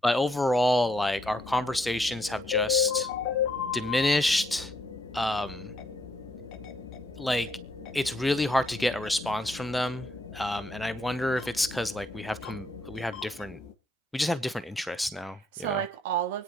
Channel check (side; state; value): both; normal; correlation 0.71